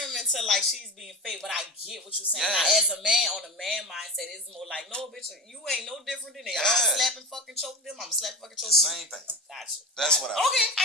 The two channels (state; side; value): normal; both; correlation 0.25